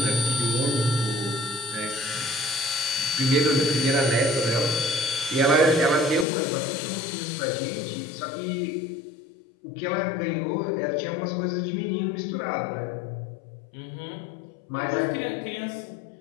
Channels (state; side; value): drops out; right; at 6.2 s